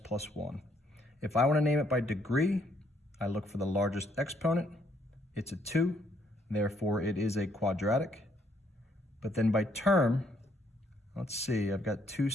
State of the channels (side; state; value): both; normal; correlation 0.69